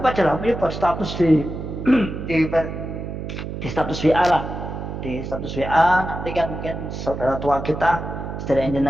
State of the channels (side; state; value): right; noise; hum, 7 dB below the sound